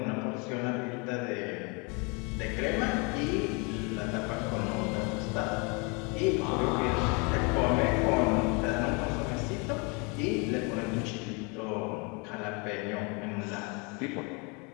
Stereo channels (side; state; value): right; quieter; 31.7 dB